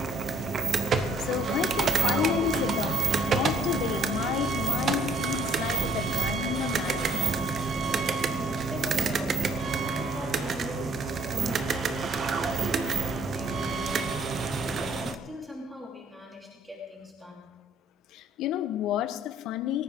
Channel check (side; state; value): both; normal; correlation 0.61